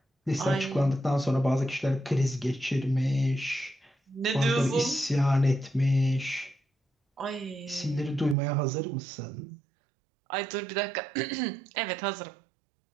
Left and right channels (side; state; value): left; drops out; at 8.3 s